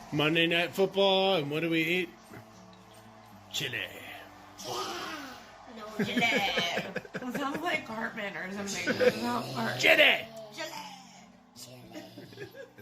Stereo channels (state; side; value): identical; both; correlation 1.00